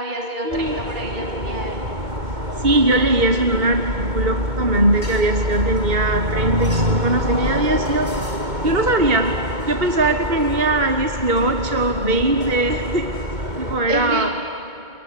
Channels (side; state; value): left; late; 2.2 ms